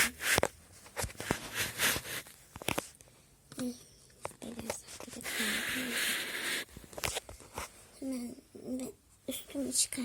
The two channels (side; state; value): both; identical; correlation 1.00